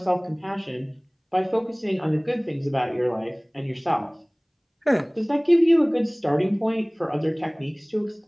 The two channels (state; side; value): identical; both; correlation 1.00